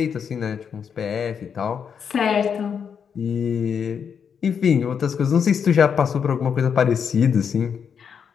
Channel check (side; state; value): right; quieter; 7.1 dB